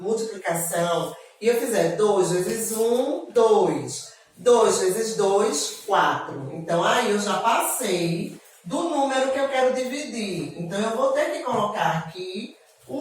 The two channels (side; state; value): both; identical; correlation 1.00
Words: multiplicação e eu fizer 2 vezes 1, 2. 2 vezes 2, 4. Então, aí eu já passei do número que eu quero dividir. Então, eu vou ter que colocar aqui o